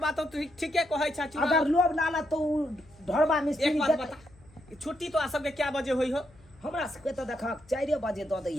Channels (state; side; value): noise; left; hum, 27 dB below the sound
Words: तो ठीके कहै छ। अगर लोभ लाला तो ढोरबा मिस्त्री एक बात बता, छुट्टी तो आ सबके क्या बजे होई हो? हमरा सबके तो देखा 4 बजे द